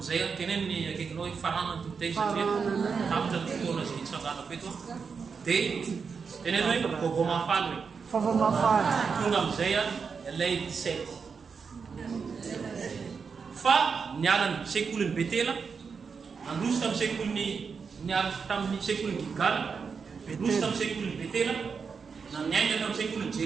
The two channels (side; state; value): left; quieter; 5.6 dB